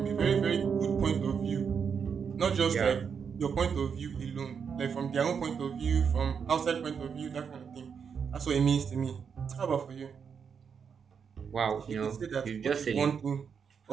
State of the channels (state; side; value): quieter; left; 6.6 dB